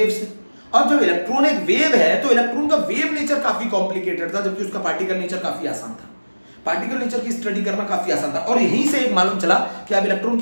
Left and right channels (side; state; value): both; inverted; correlation -1.00